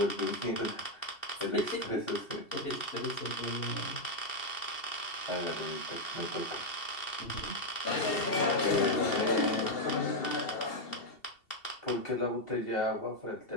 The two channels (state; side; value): late; right; 2.7 ms